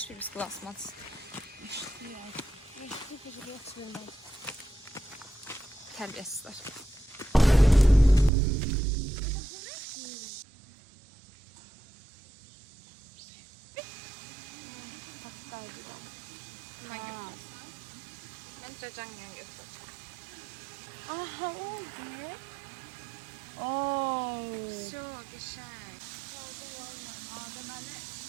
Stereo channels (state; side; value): drops out; left; at 8.3 s